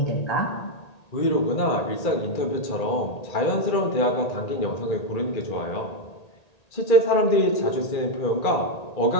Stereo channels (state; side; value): late; right; 1.8 ms